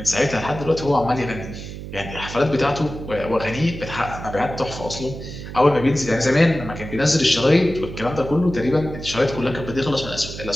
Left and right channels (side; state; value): right; noise; hum, 10 dB below the sound